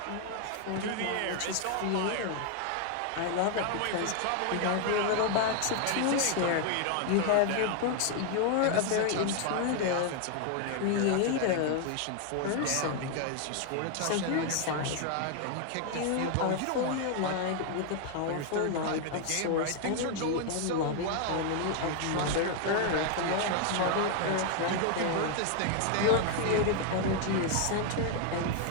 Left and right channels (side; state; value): both; different; correlation 0.00